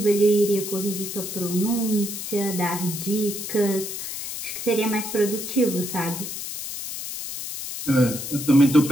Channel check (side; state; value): left; noise; hiss, 7 dB below the sound